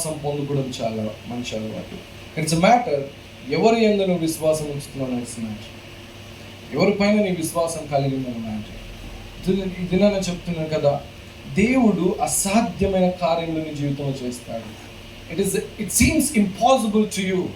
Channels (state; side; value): identical; both; correlation 1.00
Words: పొందుకోవడం చాలా మంచి అలవాటు. ఇట్స్ ఎ మ్యాటర్ ఎవరి యందు నువ్వు విశ్వాసం ఉంచుతున్నావు. ఇట్స్ మ్యాటర్ ఎవరిపైన నీ విశ్వాసం కలిగిందని మ్యాటర్. ఇది నేను చెప్తున్నాను కదా, దేవుడు అసాధ్యమైన కార్యములు నీ జీవితంలో చేస్తాడు. It seems impossible to you.